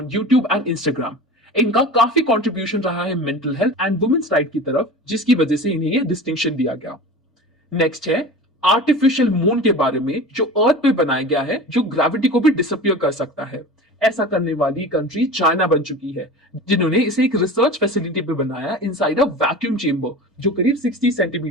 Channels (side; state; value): both; normal; correlation 0.34